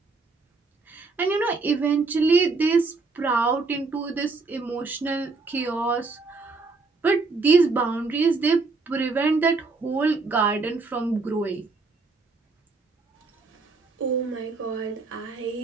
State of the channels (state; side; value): quieter; left; 4.0 dB